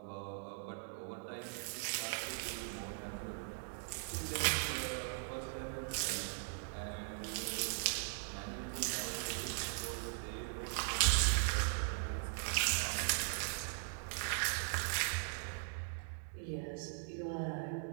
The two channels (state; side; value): silent; left; digital silence